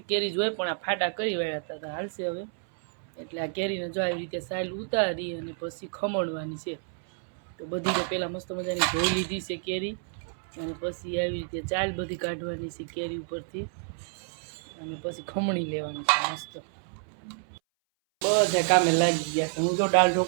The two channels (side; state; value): left; silent; 58 dB below the other